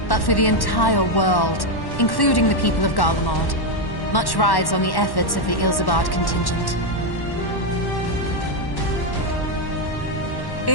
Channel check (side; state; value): right; late; 1.1 ms